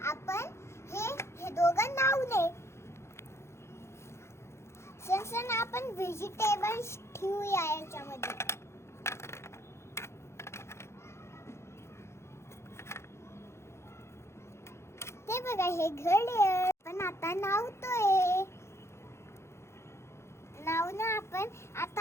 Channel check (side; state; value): right; late; 0.13 ms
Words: आपण हे दोघं नावले. सनसना आपण व्हेजिटेबल्स ठेवूया याच्यामध्ये. ते बघा, हे घड्याळ पण आता नावतोय. नाव ना